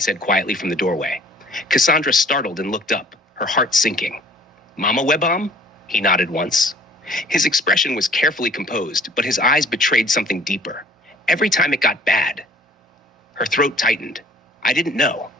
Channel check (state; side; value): normal; both; correlation 0.52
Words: quietly from the doorway. Cassandra startled and looked up, her heart sinking. Mama Webam? He nodded once. His expression was carefully composed, but his eyes betrayed something deeper. Every time it got bad. Her throat tightened. I didn't know.